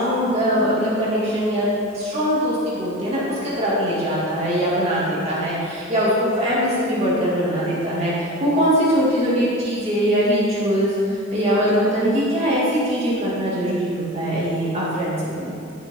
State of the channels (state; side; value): normal; both; correlation 0.30